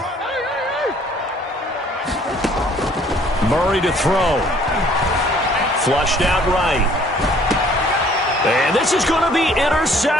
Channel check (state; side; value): normal; both; correlation 0.58